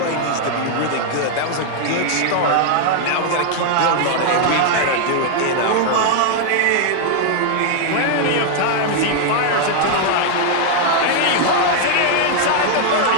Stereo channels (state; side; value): different; both; correlation 0.00